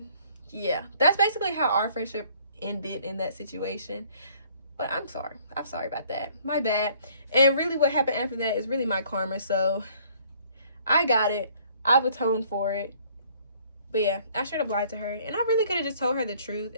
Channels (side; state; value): both; inverted; correlation -0.59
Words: yeah, that's basically how our friendship ended in that situation. But I'm sorry. I'm sorry about that. My bad. And really what happened after that is really my karma. So I got it. I've atoned for it. But yeah, I straight up lied to her. And I really could have just told her the truth.